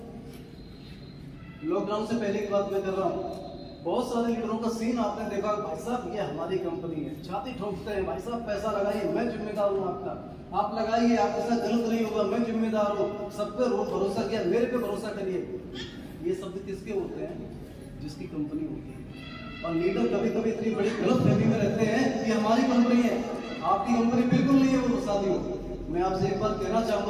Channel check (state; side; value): identical; both; correlation 1.00